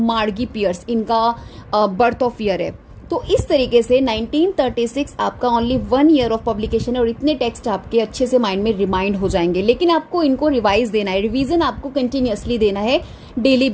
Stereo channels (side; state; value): both; identical; correlation 1.00